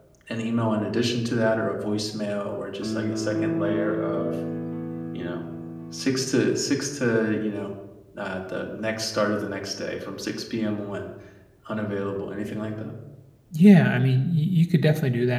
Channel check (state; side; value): identical; both; correlation 1.00